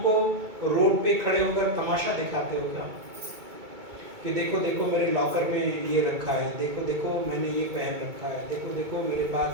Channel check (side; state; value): left; late; 2.2 ms